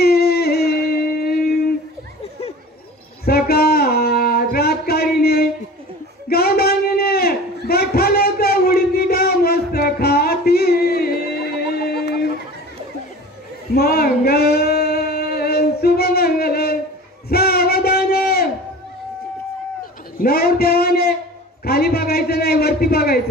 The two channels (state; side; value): normal; both; correlation 0.39